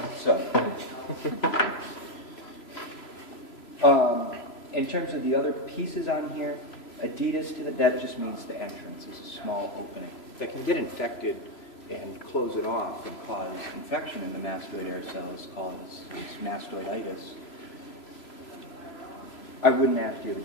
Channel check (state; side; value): late; right; 3.0 ms